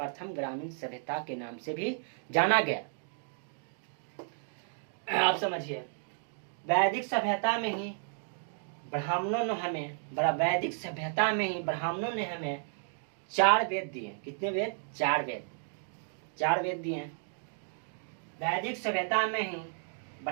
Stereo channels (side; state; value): left; silent; digital silence